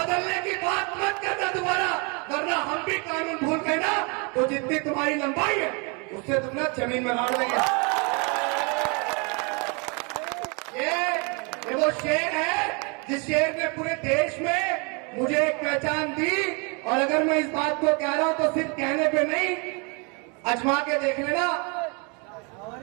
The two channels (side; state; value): left; quieter; 32.8 dB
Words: की बात मत करना दोबारा, वरना हम भी कानून भूल गए ना तो जितनी तुम्हारी लंबाई है उससे तुम ना जमीन में गाड़ देंगे। ये वो शेर है जिस शेर ने पूरे देश में मुझे एक पहचान दी। और अगर मैं इस बात को कह रहा हूं तो सिर्फ कहने पे नहीं, अजमा के देख लेना,